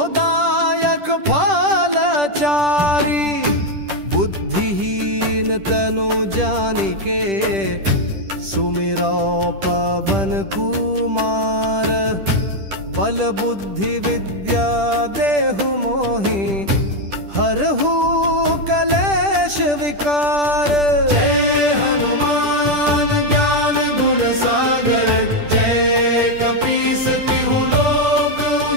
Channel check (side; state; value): left; late; 10 ms